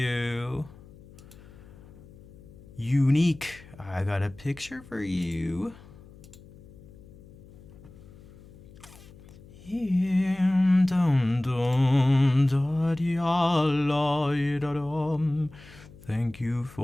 Unique. I got a picture for you. Thank you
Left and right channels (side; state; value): left; noise; hum, 21 dB below the sound